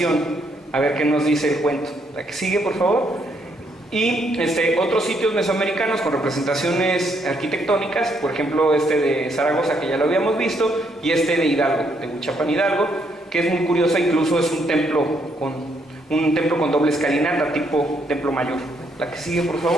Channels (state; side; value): normal; both; correlation 0.73